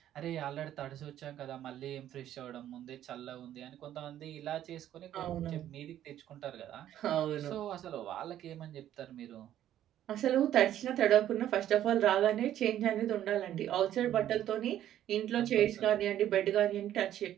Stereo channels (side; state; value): left; quieter; 11.7 dB